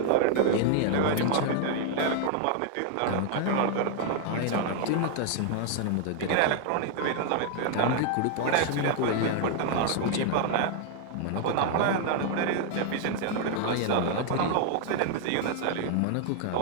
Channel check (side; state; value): both; different; correlation 0.00